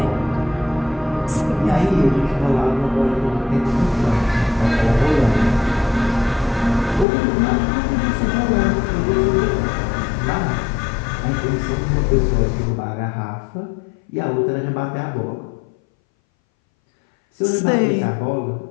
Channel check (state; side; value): drops out; right; at 7.1 s